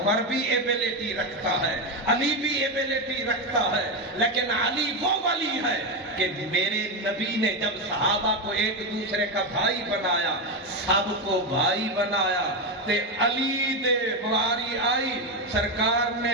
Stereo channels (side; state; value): both; normal; correlation 0.11